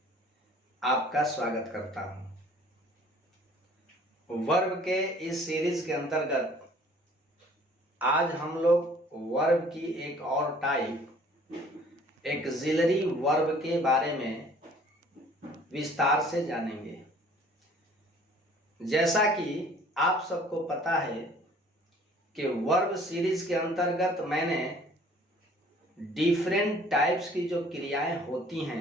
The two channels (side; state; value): both; normal; correlation 0.54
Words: आपका स्वागत करता हूँ। वर्ब के इस सीरीज के अंतर्गत आज हम लोग वर्ब की एक और टाइप एक्सिलरी वर्ब के बारे में विस्तार से जानेंगे। जैसा कि आप सबको पता है कि वर्ब सीरीज के अंतर्गत मैंने डिफरेंट टाइप्स की जो क्रियाएं होती